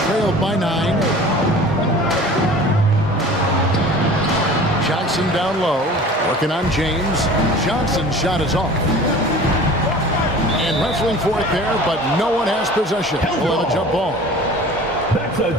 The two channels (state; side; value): normal; both; correlation 0.42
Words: trailed by 9. Johnson down low, working on James. Johnson's shot is off. And wrestling for it there, but no one has possession. We'll have a jump ball. That's a